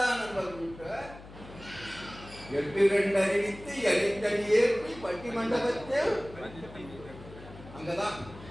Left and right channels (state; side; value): noise; left; hum, 17 dB below the sound